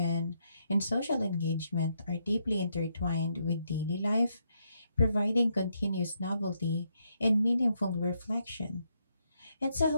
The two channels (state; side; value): inverted; both; correlation -0.78